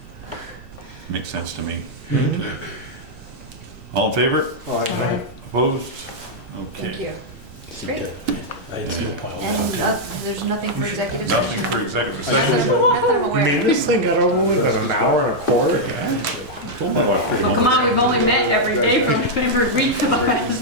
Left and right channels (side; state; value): right; noise; rumble, 20 dB below the sound